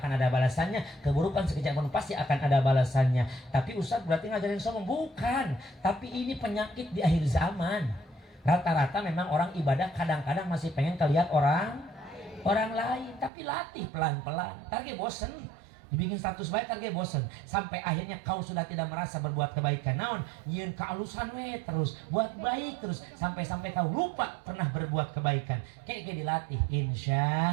ada balasannya, keburukan sekecil apapun pasti akan ada balasannya. Tapi Ustaz berarti ngajarin sombong? Bukan, tapi ini penyakit di akhir zaman. Rata-rata memang orang ibadah kadang-kadang masih pengen kelihat orang lain, tapi latih pelan-pelan. Target bosen. Dibikin status baik target bosen, sampai akhirnya kau sudah tidak merasa berbuat kebaikan. Naon nyeun kealusan we terus buat baik terus sampai kau lupa pernah berbuat kebaikan. Kayak dilatih,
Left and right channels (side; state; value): left; drops out; at 13.3 s